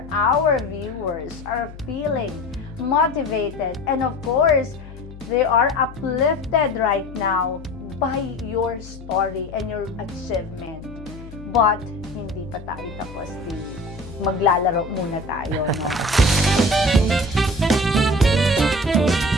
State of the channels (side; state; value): left; noise; hum, 15 dB below the sound